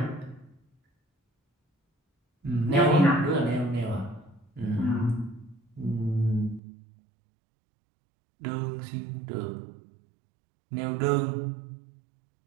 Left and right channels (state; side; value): drops out; left; at 6.6 s